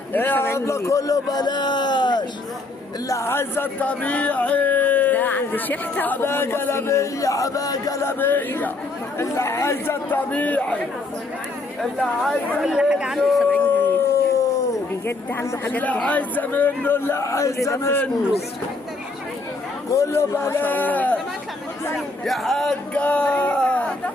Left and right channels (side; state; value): right; quieter; 3.2 dB